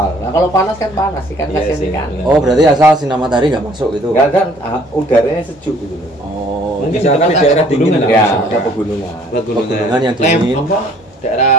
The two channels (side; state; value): both; normal; correlation 0.58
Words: Nah kalau panas kan panas ikan Iya kasihan sih. ikan. Oh, berarti asal sinar matahari nggak masuk gitu. Nggak kan udaranya sejuk gitu loh. Oh, Mungkin Misalkan di tempat daerah dingin pegunungan lah. Ya, misalkan. ada pegunungan. Pegunungan yang dingin. Apa?